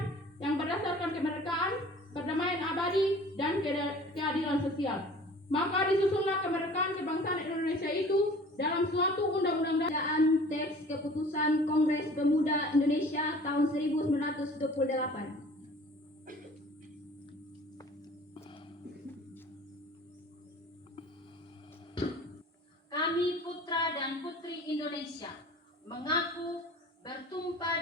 yang berdasarkan kemerdekaan, perdamaian abadi, dan keadilan sosial. Maka disusunlah kemerdekaan kebangsaan Indonesia itu dalam suatu undang-undang. Bacaan teks keputusan Kongres Pemuda Indonesia tahun 1928. Kami putra dan putri Indonesia mengaku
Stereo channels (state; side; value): normal; both; correlation 0.47